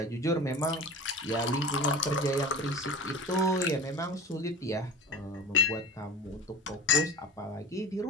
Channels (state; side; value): normal; both; correlation 0.35